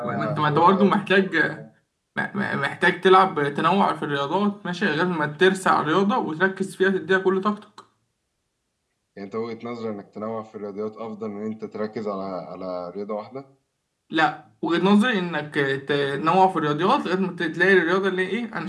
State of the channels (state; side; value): identical; both; correlation 1.00